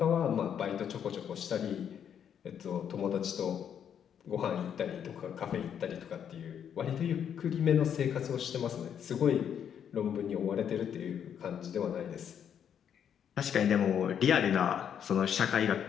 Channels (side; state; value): right; quieter; 8.6 dB